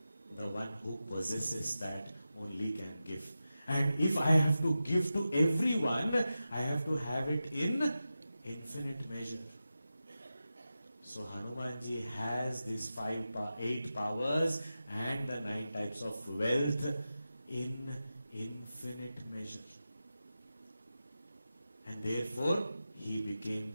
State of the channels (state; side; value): inverted; both; correlation -0.93